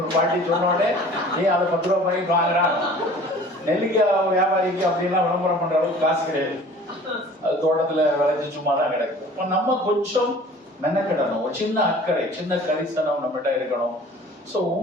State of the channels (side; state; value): both; normal; correlation 0.47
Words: ஒரு பாட்டி சொன்னோடனே அதை 10 ரூபாய் பண்ணி வாங்குறாங்க. நெல்லிக்காய் வியாபாரிக்கு அப்படின்லாம் விளம்பரம் பண்ற அளவுக்கு காசு கிடையாது. அது தோட்டத்துல விளைஞ்சு சும்மா தான் கிடைக்கும். நம்ம கொஞ்சம் மெனக்கிடணும். ஒரு சின்ன அக்கறை, சின்ன கரிசனம் நம்மகிட்ட இருக்கணும். சோ